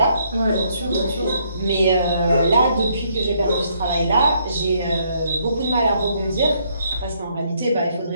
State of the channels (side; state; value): both; inverted; correlation -0.70